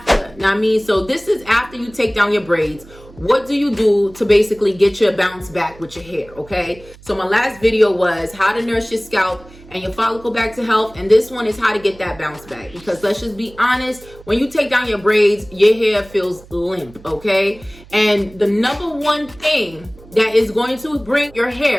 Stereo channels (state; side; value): noise; right; hum, 22 dB below the sound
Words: Now I mean, so this is after you take down your braids. What do you do to basically get your bounce back with your hair, okay? So my last video was how to nurse your scalp and your follicle back to health, and this one is how to get that bounce back. Because let's just be honest, when you take down your braids, your hair feels limp, okay? And the number one thing that is going to bring your